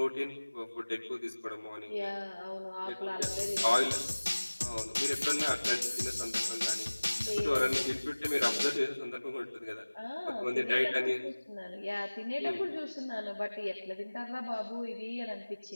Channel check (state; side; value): inverted; both; correlation -1.00